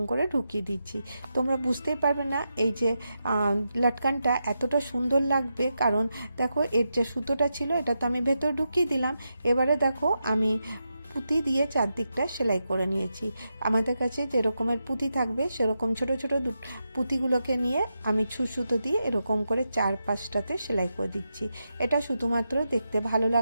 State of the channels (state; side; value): inverted; both; correlation -0.87